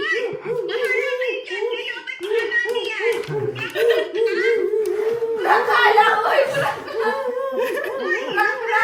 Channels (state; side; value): identical; both; correlation 1.00